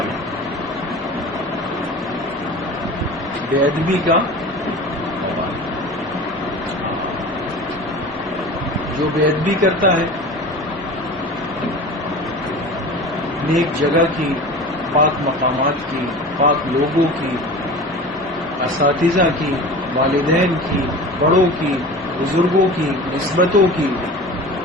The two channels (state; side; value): normal; both; correlation 0.36